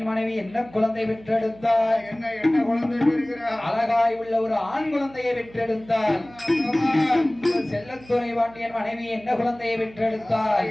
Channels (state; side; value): noise; right; hum, 22 dB below the sound